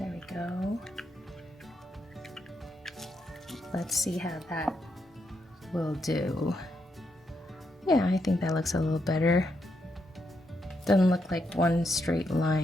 we go. Let's see how that will do. Yeah, I think that looks a little better. Doesn't look like one straight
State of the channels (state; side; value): normal; both; correlation 0.80